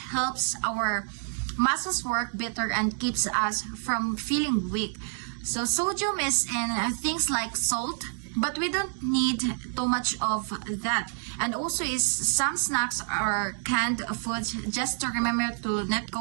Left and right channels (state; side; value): silent; left; digital silence